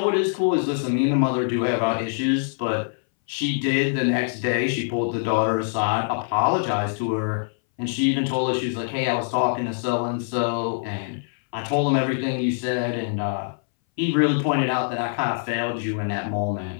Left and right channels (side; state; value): right; silent; 60 dB below the other